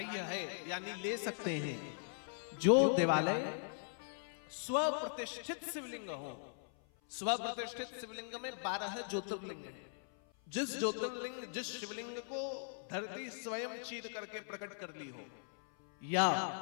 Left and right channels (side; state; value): right; silent; 51 dB below the other